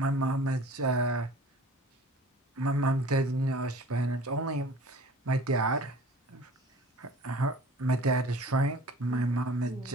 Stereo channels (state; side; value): normal; both; correlation 0.45